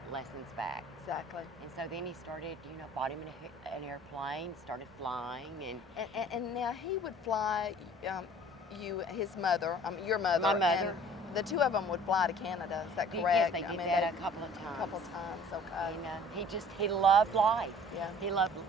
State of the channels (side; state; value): both; normal; correlation 0.49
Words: lessons back. Exactly. And so then he started, bought him an airplane, started flying, and now he would fly his mother, your mother. My mother. And the two of them would fly to Canada. Is that correct? Yes, they did that a couple of times. A couple of times, okay. And he loved life. Yeah. He loved,